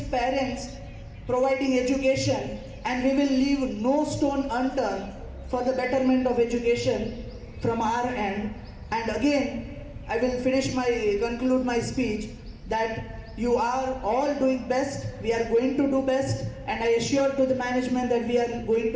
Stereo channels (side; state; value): both; identical; correlation 1.00